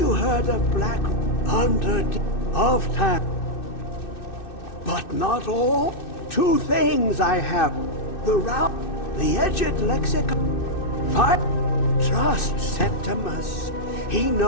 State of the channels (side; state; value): right; late; 2.6 ms